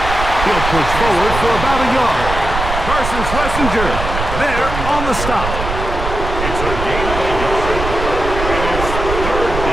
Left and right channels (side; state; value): right; noise; rumble, 5 dB below the sound